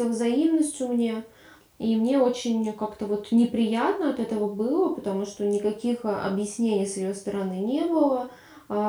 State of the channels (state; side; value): identical; both; correlation 1.00